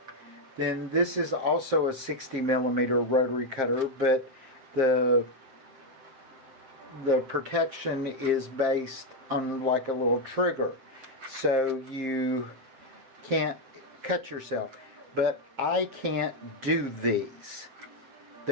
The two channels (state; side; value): late; left; 7.6 ms